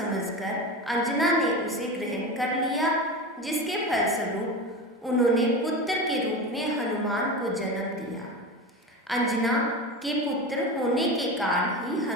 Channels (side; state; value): both; normal; correlation 0.25